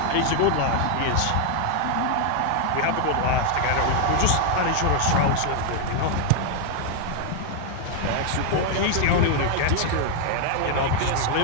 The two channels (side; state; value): both; different; correlation 0.00